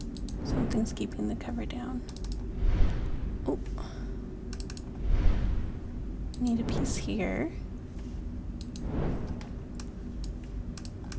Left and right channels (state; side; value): identical; both; correlation 1.00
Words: Something's keeping the cover down. Oh. Need a piece here.